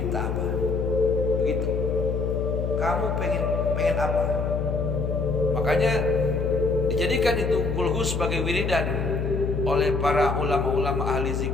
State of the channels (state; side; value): noise; left; hum, 1 dB below the sound